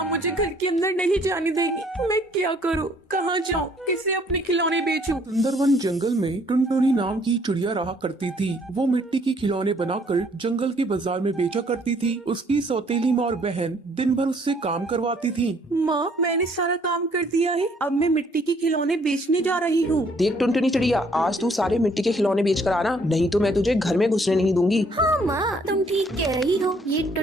मुझे घर के अंदर नहीं जाने देगी। मैं क्या करूँ, कहाँ जाऊँ, किसे अपने खिलौने बेचूं? सुंदरवन जंगल में टुनटुनी नाम की चिड़िया रहा करती थी। वो मिट्टी के खिलौने बनाकर जंगल के बाजार में बेचा करती थी। उसकी सौतेली माँ और बहन दिन भर उससे काम करवाती थी। माँ, मैंने सारा काम कर दिया है, अब मैं मिट्टी के खिलौने बेचने जा रही हूँ। देख टुनटुनी चिड़िया, आज तू सारे मिट्टी के खिलौने बेच कर आना, नहीं तो मैं तुझे घर में घुसने नहीं दूंगी। हाँ माँ, तुम ठीक कह रही हो। ये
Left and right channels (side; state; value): both; normal; correlation 0.63